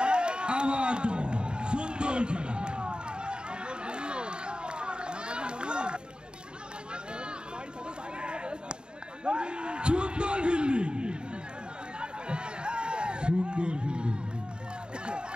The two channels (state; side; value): late; left; 0.050 ms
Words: আবার সুন্দর খেলা। সুন্দর ফিল্ডিং, সুন্দর ফিল্ডিং।